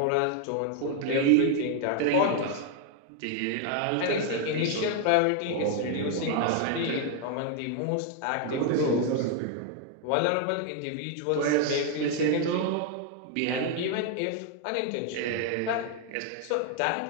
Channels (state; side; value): different; both; correlation 0.00